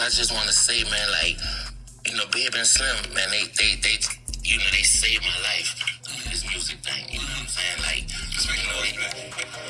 I just want to say, man, like, Bib and Slim, man, they saved my life. This music thing, you know what I'm saying? Like, that's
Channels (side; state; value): both; identical; correlation 1.00